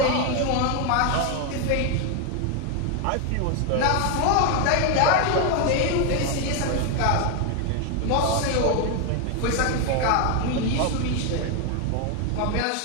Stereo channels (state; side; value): different; both; correlation 0.01